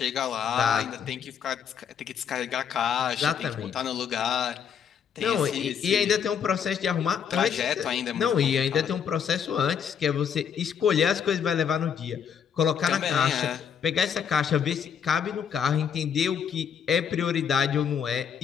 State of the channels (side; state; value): right; quieter; 7.7 dB